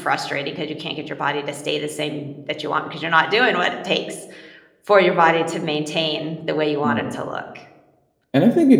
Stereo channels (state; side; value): identical; both; correlation 1.00